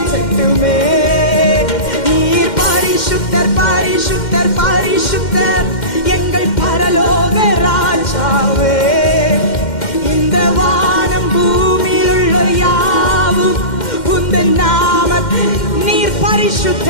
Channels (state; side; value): late; right; 2.1 ms